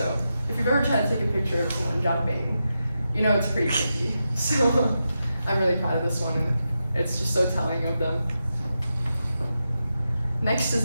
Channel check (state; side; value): inverted; both; correlation -0.88